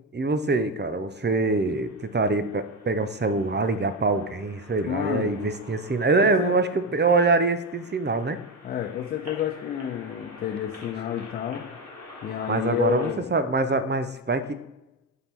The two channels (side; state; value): both; normal; correlation 0.13